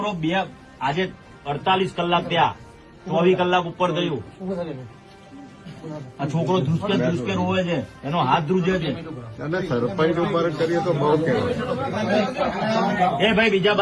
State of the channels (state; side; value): identical; both; correlation 1.00